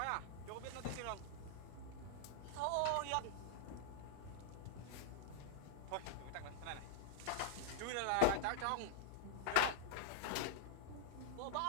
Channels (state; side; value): different; both; correlation 0.00